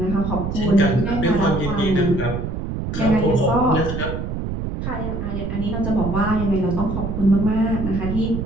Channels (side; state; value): right; noise; rumble, 4 dB below the sound